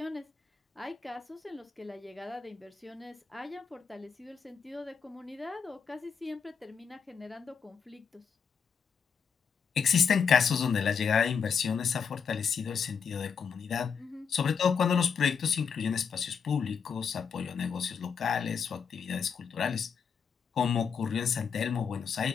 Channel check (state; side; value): quieter; right; 6.5 dB